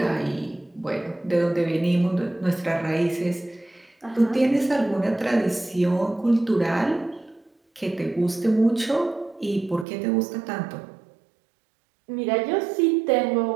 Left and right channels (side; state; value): left; drops out; at 9.9 s